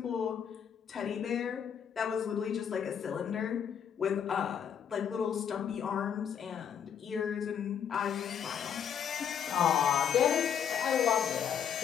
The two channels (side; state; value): right; quieter; 8.3 dB